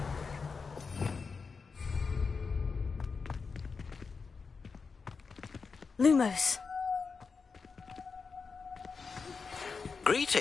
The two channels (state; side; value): quieter; right; 5.0 dB